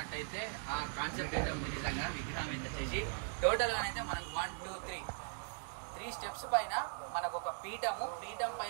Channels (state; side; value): silent; left; digital silence